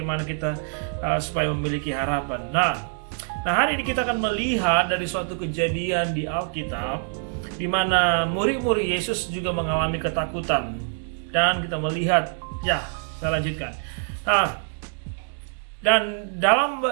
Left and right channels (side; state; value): left; silent; 62 dB below the other